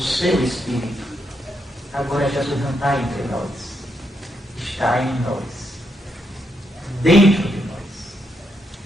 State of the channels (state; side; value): normal; both; correlation 0.80